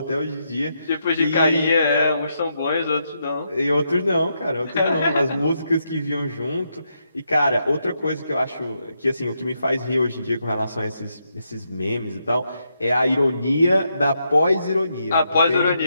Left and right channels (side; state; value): both; inverted; correlation -0.81